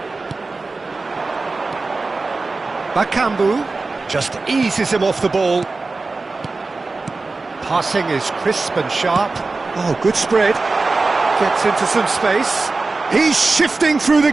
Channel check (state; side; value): quieter; left; 3.7 dB